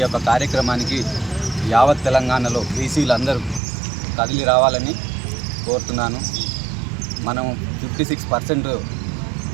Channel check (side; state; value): left; drops out; at 3.6 s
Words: యొక్క కార్యక్రమానికి యావత్ తెలంగాణలో బీసీలందరూ కదిలి రావాలని కోరుతున్నాను. మనం 56%